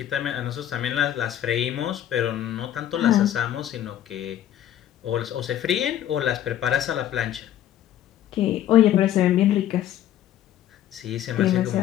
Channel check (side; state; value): right; quieter; 11.5 dB